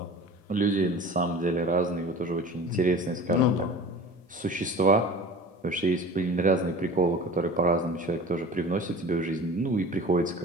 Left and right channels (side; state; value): both; normal; correlation 0.39